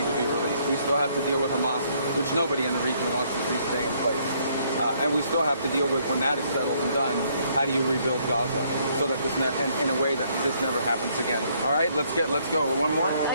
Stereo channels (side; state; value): both; inverted; correlation -0.68